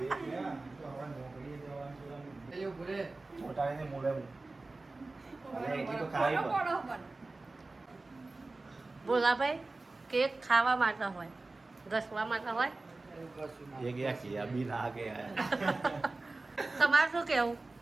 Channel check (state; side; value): quieter; left; 3.3 dB